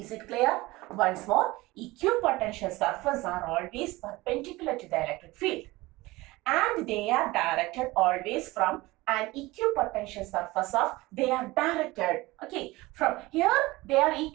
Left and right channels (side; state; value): left; quieter; 20.4 dB